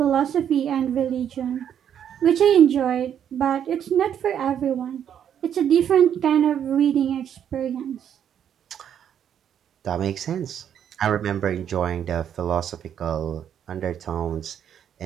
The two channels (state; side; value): quieter; left; 9.2 dB